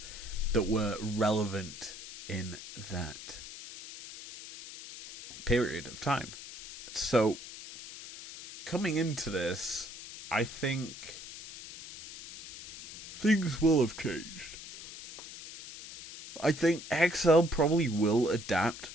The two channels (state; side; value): noise; left; hiss, 13 dB below the sound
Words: that were relevant in that period of time. So, coming into this, I think things will have changed. I think XL probably will adapt